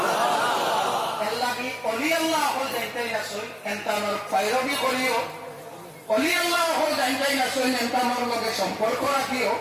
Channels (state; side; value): identical; both; correlation 1.00